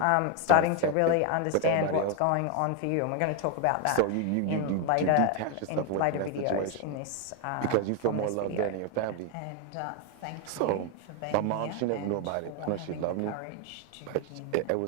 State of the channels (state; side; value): different; both; correlation 0.01